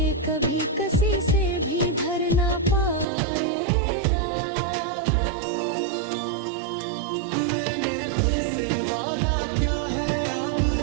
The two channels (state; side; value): drops out; left; at 3.1 s